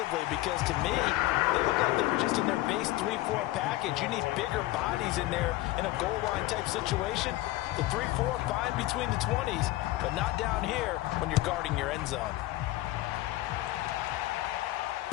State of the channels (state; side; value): quieter; right; 17.4 dB